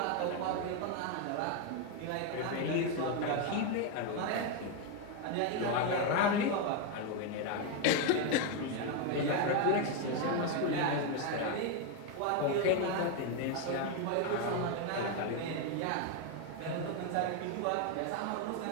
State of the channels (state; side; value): different; both; correlation 0.02